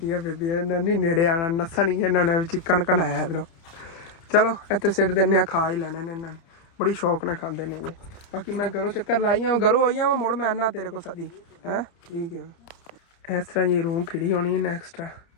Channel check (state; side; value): late; right; 30 ms